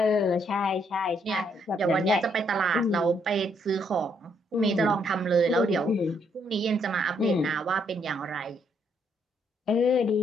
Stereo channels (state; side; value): normal; both; correlation 0.72